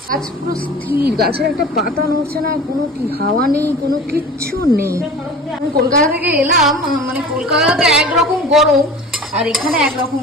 গাছ পুরো স্থির, গাছের একটা পাতা নড়ছে না, কোনো কি হাওয়া নেই, কোনো কিচ্ছু নেই। আমি কলকাতা থেকে এলাম, মানে কলকাতাতে একরকম গরম আর এখানে একরকম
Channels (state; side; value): normal; both; correlation 0.39